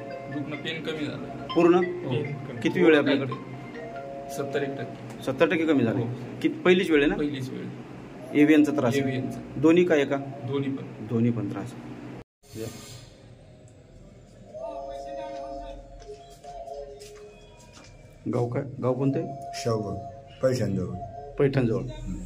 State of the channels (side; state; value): both; identical; correlation 1.00